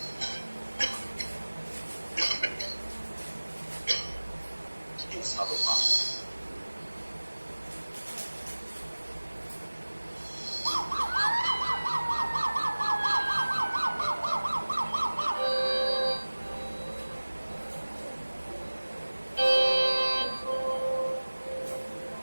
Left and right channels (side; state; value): both; inverted; correlation -1.00